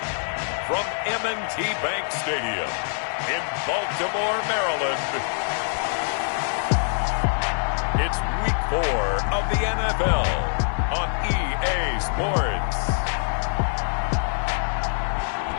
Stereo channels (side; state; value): right; silent; digital silence